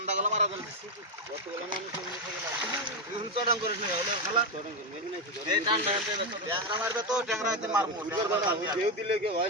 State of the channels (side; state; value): both; normal; correlation 0.08